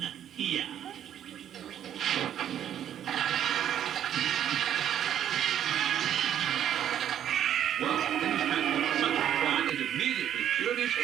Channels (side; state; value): left; quieter; 10.3 dB